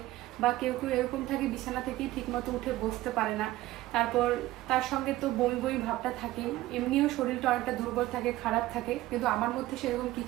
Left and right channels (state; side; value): quieter; left; 16.5 dB